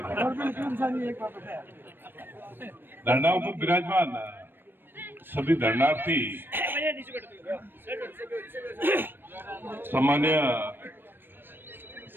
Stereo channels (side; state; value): left; late; 0.097 ms